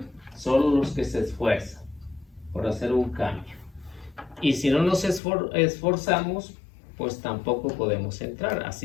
Solo los que se esfuerzan por hacer un cambio. Y si no nos esforzamos, pues tampoco podemos entrar.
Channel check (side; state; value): right; drops out; at 5.2 s